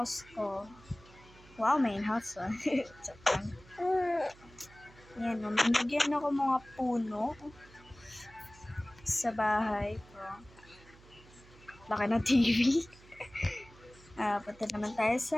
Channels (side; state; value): right; noise; hum, 23 dB below the sound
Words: ko. Wow, main house, Yan, nilagyan ako mga puno sa bahay ko. Laki ng TV. Punta naman tayo